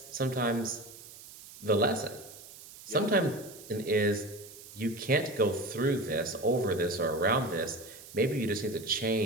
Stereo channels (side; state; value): right; noise; hiss, 17 dB below the sound